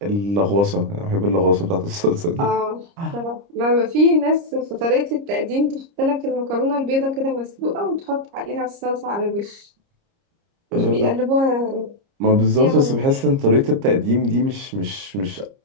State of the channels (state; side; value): late; left; 30 ms